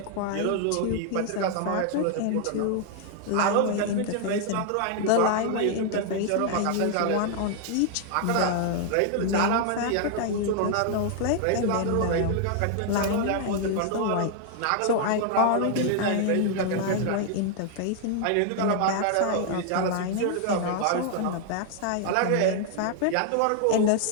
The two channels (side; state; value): both; different; correlation 0.00